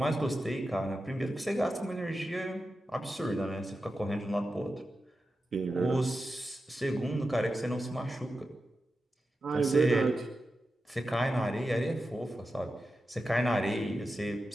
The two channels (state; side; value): normal; both; correlation 0.91